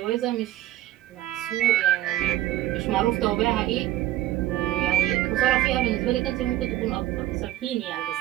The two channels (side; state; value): left; quieter; 14.4 dB